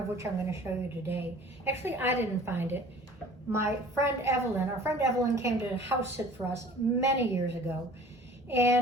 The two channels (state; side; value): normal; both; correlation 0.48